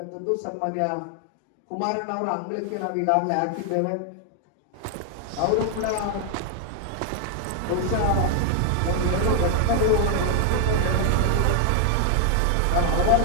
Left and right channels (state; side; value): different; both; correlation 0.00